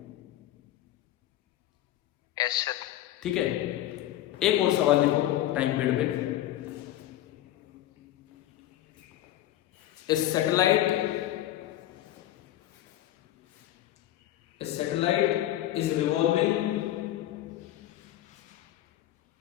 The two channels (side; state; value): right; quieter; 13.5 dB